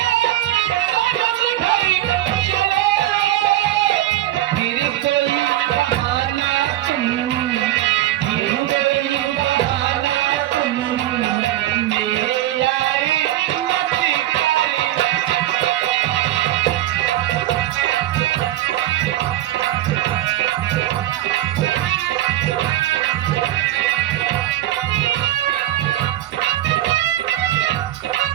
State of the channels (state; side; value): quieter; left; 14.3 dB